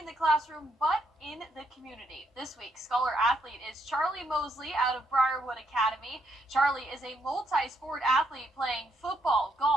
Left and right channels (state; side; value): normal; both; correlation 0.75